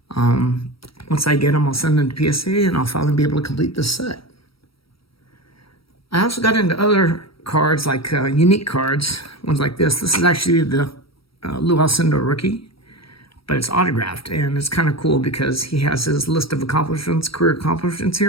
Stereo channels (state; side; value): late; right; 0.75 ms